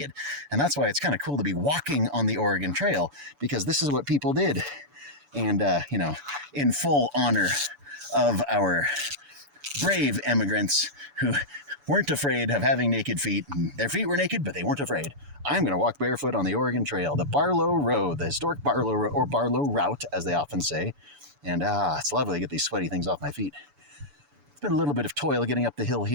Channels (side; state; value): left; late; 7.0 ms